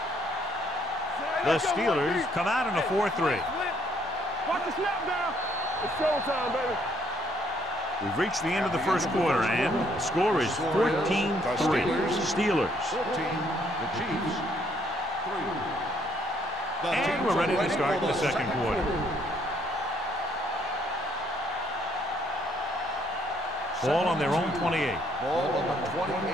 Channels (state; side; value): normal; both; correlation 0.68